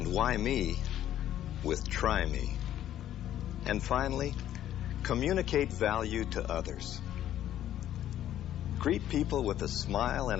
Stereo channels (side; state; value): right; quieter; 11.8 dB